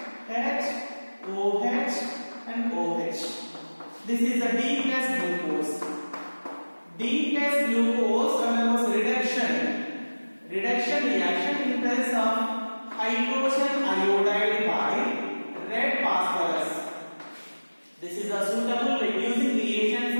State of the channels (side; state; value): both; inverted; correlation -1.00